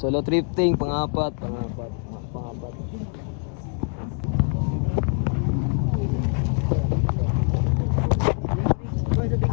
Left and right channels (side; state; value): right; quieter; 39.5 dB